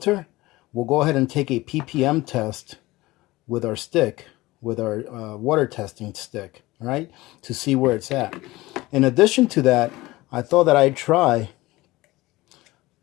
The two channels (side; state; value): right; quieter; 19.5 dB